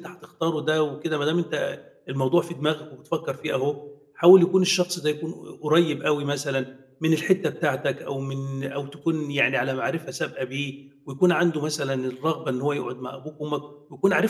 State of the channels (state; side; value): identical; both; correlation 1.00